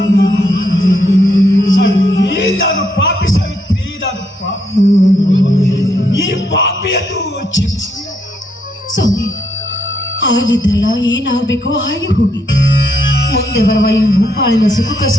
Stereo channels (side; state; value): both; normal; correlation 0.75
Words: ನಾನು ಪಾಪಿ ಸಾವಿತ್ರಿ, ನಾನು ಪಾಪಿ. ಈ ಪಾಪಿಯನ್ನು ಕ್ಷಮಿಸಿ. ಸ್ವಾಮಿ, ಆಗಿದ್ದಲ್ಲ, ಏನಾಗಬೇಕೋ ಹಾಗೆ ಹೋಗಿ. ಮುಂದೆ ಬರುವ ಈ ಭೂಪಾಳಿನ